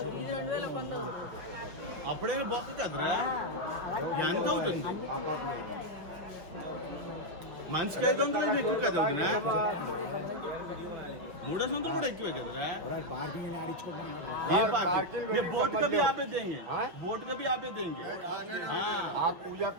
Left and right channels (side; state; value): left; late; 5.9 ms